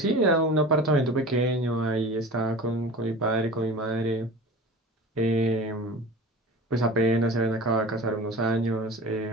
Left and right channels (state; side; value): normal; both; correlation 0.36